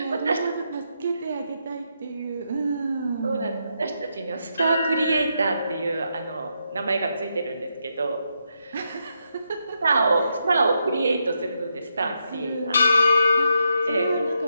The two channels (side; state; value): both; inverted; correlation -0.81